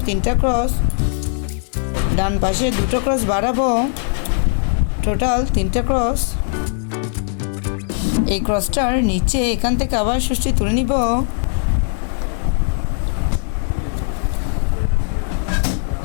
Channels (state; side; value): silent; right; digital silence